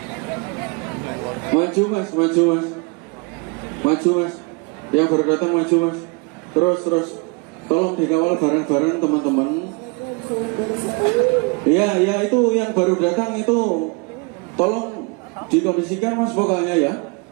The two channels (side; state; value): left; quieter; 30.4 dB